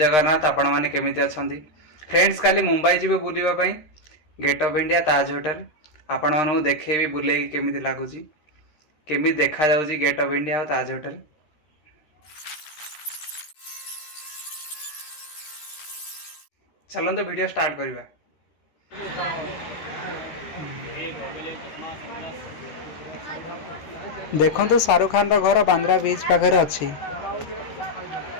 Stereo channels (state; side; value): late; right; 13 ms